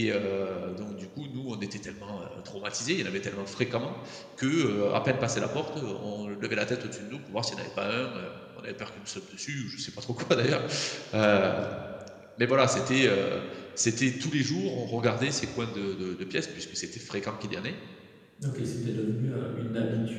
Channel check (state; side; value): identical; both; correlation 1.00